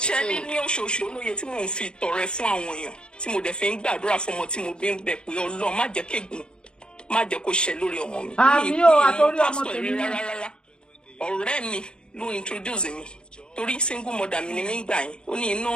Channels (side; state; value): right; late; 0.050 ms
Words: Ṣé ní oṣooṣù olóye tí mò ń fi tọrẹ fún àwọn èèyàn tí mo dẹ̀ fi ń gbàdúrà fún ọmọ tí mo bí ń bẹ̀ pé Ọlọ́run má jẹ́ kégun má jẹ́ kó ṣẹ lórí ọmọ mi. Àmì o àtòrí ọmọ tèmi rárá ọ̀rẹ́ mi ló introduce mi torí single mother mi ni mí gbà yín ó ní